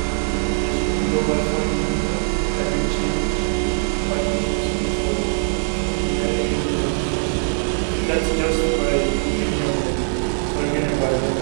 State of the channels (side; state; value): left; silent; 63 dB below the other